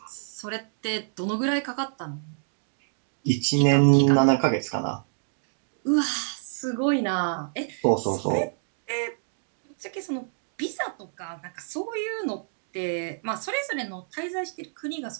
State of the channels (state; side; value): silent; left; digital silence